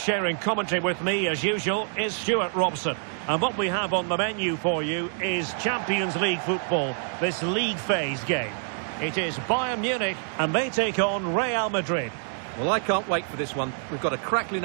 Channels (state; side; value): silent; left; 61 dB below the other